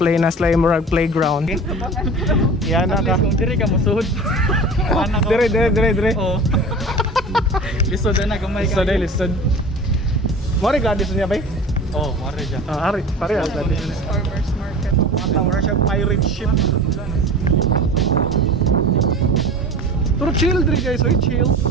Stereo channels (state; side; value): normal; both; correlation 0.37